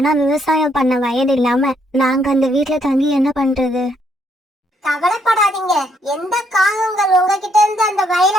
விவசாயம் பண்ண வயது இல்லாம நாங்க அந்த வீட்டுல தங்கி என்ன பண்றது? கவலைப்படாதீங்க. எந்த காகங்கள் உங்ககிட்ட இருந்து அந்த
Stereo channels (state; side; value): normal; both; correlation 0.72